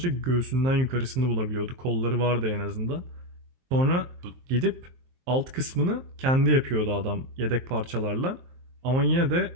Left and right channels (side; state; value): left; late; 23 ms